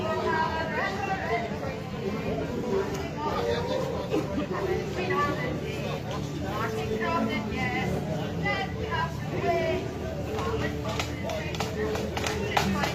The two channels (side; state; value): both; identical; correlation 1.00